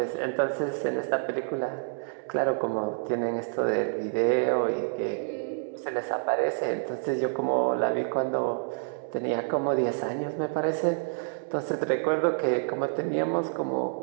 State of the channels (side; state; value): left; silent; 59 dB below the other